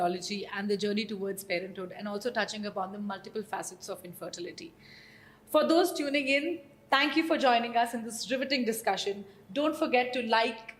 and the journey towards parenthood, and also touching upon the multiple facets of infertility. For those tuning in, thank you for joining us in this riveting discussion. Don't forget to like,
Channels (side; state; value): both; identical; correlation 1.00